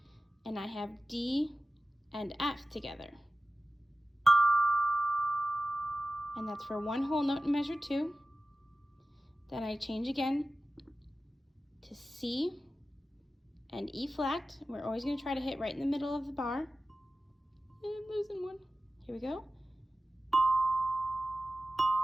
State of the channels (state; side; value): normal; both; correlation 0.95